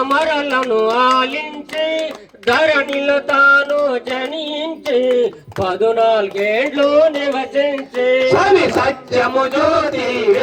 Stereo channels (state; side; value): identical; both; correlation 1.00